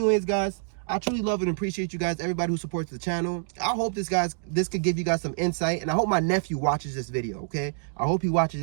guys, I truly love and appreciate you guys, everybody who supports the channel. I hope this could give you guys some insight. And I hope my nephew watches this video, okay? I hope he watches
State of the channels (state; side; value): silent; left; digital silence